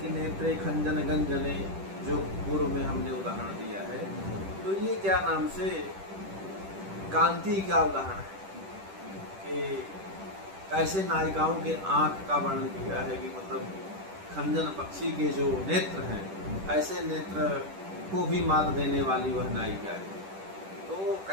नेत्रे खंजन गंजने, जो पूर्व में हमने उदाहरण दिया है, तो ये क्या नाम से कांति का उदाहरण है कि कैसे नायिकाओं के आंख का वर्णन किया है कि मतलब खंजन पक्षी के जो नेत्र हैं ऐसे नेत्र को भी मात देने वाली वह नायिका है। तो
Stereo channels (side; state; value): left; late; 10 ms